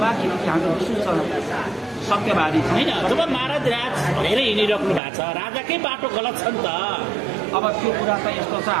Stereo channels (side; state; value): left; drops out; at 5.0 s